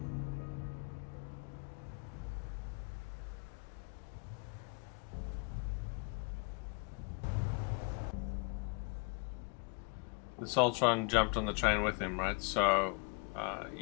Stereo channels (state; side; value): quieter; right; 34.9 dB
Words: the Soltron jumped on the train with him, right? So